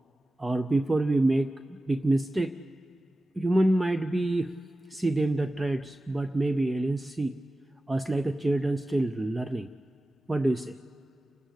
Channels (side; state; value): both; normal; correlation 0.95